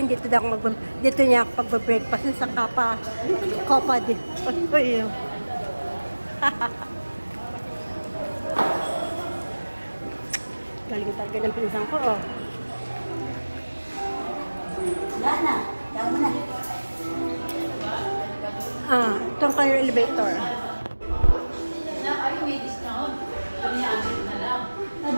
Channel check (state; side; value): inverted; both; correlation -1.00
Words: dito daw ako dito niya ako pagbe-breakfast sa Kapa di. Oy. Galing talaga ng pinsang ko, oh. Wala na. Tama mo na. Ah, itong kayo elevator. Ay, may discount. Piniamit na lang.